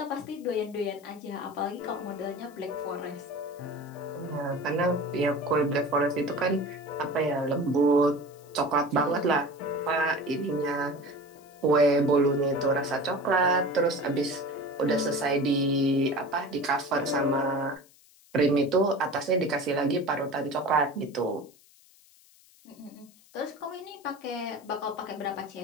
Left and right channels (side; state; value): left; noise; hiss, 28 dB below the sound